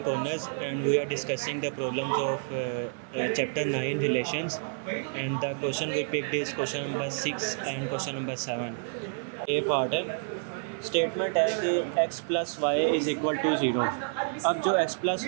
Corners and we are discussing the problems of chapter 9 relations, and the question we picked is question number 6 and question number 7. A part है, स्टेटमेंट है कि x plus y is equal to 0. अब जो x प्लस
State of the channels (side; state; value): left; silent; 58 dB below the other